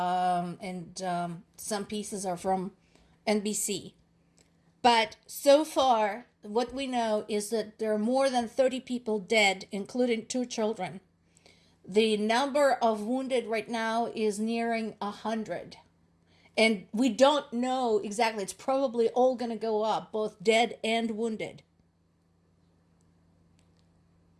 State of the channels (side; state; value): both; identical; correlation 1.00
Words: some pieces are from NBC. But so far, what we know is that there are more than 30 people dead, including 2 children. The number of wounded right now is nearing 100. And we don't know exactly. It's probably all going to go up, both dead and wounded.